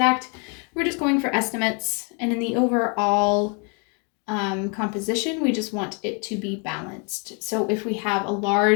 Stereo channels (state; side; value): quieter; right; 36.0 dB